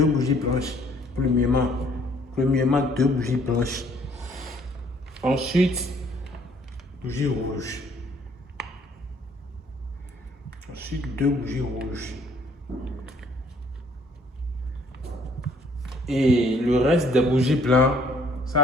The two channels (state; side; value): normal; both; correlation 0.62